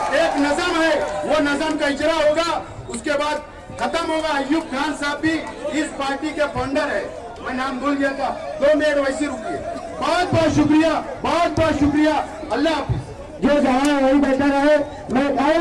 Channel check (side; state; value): both; identical; correlation 1.00